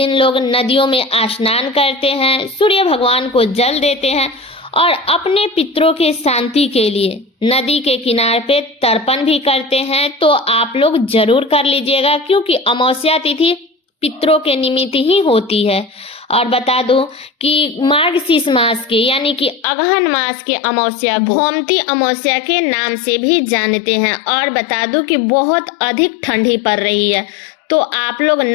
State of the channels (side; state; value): right; drops out; at 19.7 s